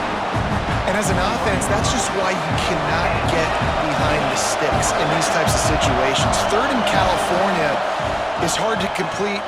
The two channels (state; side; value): identical; both; correlation 1.00